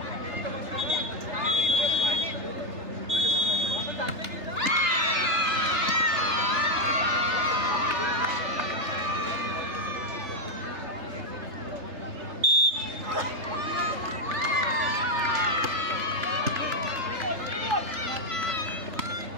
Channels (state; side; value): late; left; 3.3 ms